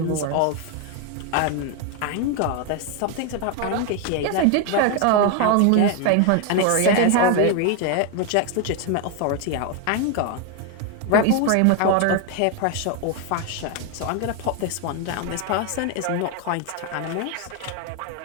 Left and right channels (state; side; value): different; both; correlation 0.01